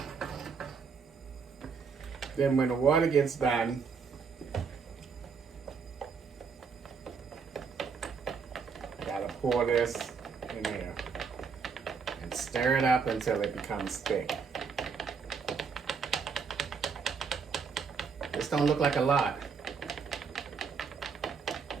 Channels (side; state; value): left; quieter; 5.7 dB